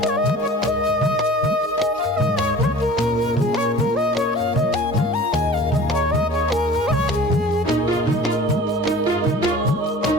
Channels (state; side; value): normal; both; correlation 0.43